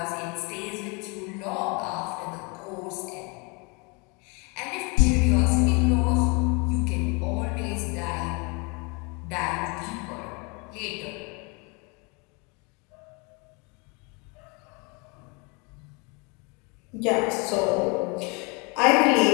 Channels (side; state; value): right; quieter; 31.2 dB